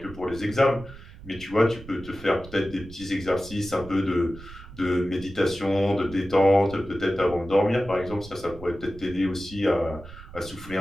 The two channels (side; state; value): right; noise; rumble, 17 dB below the sound